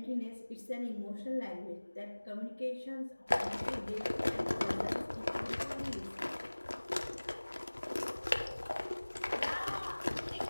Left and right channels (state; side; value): inverted; both; correlation -1.00